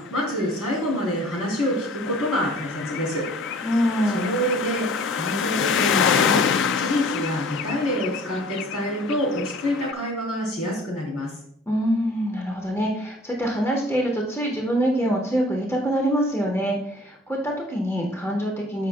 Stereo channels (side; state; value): both; normal; correlation 0.49